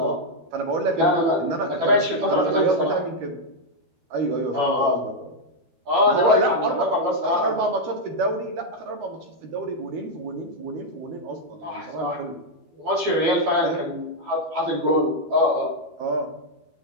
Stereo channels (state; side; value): late; left; 12 ms